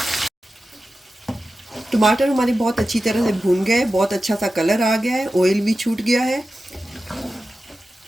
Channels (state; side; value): normal; both; correlation 0.93